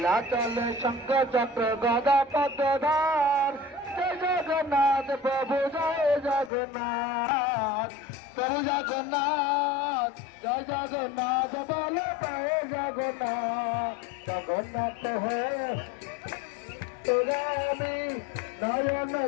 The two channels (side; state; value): right; drops out; at 6.5 s